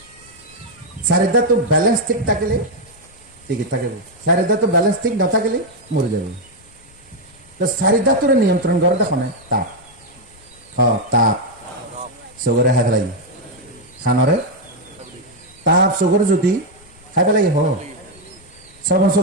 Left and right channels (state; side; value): noise; left; rumble, 26 dB below the sound